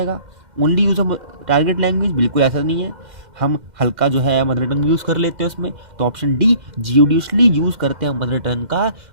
Only use of target language, बिल्कुल ऐसा नहीं है, हम हल्का जो है मदर टंग यूज़ कर लेते हैं उसमें। तो ऑप्शन डी ज्यूडिशली यूज़ करते हैं मदर टंग का,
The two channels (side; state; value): left; late; 2.1 ms